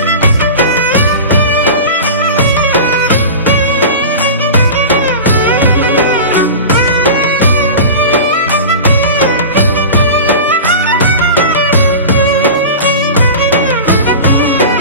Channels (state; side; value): inverted; both; correlation -0.31